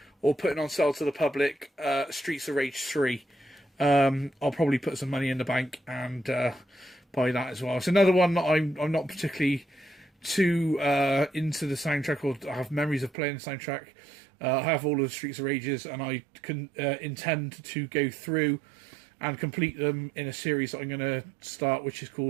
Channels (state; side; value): drops out; left; at 13.1 s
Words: putting on sale to the public Streets of Rage 3. I'll probably put some money in the bank and buy that as well. It's another one that I'm not particularly too into the soundtrack, or I have memories of playing the soundtrack. I have all of the Streets of Rages, and I can intend to go through and complete them in a series that I'm going to start, which is